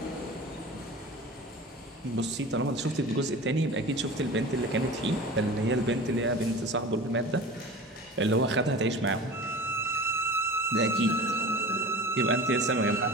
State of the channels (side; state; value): both; normal; correlation 0.36